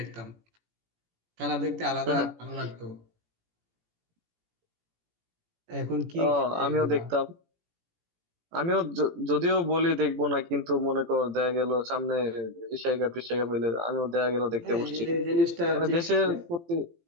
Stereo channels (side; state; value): left; late; 17 ms